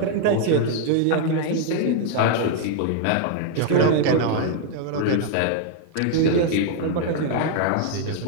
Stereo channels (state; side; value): different; both; correlation 0.00